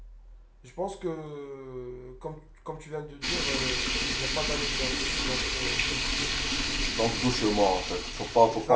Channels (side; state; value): both; identical; correlation 1.00